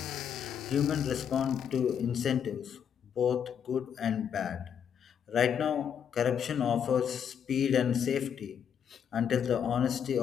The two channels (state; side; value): quieter; right; 8.1 dB